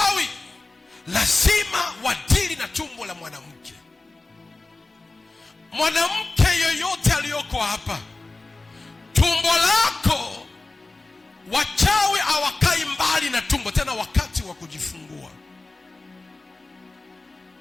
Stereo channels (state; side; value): quieter; right; 3.3 dB